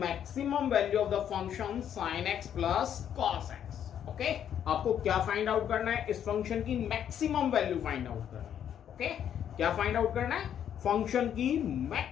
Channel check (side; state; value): right; quieter; 9.4 dB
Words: maximum value of the function sin x plus cos x। Okay, आपको क्या फाइंड आउट करना है? इस फंक्शन की मैक्सिमम वैल्यू फाइंड आउट करना है। ओके, क्या फाइंड आउट करना है? फंक्शन की